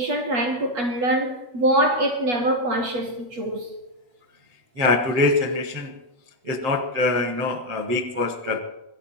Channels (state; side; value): late; left; 8.3 ms